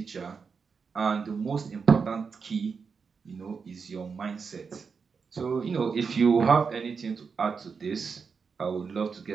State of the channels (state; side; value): quieter; left; 5.5 dB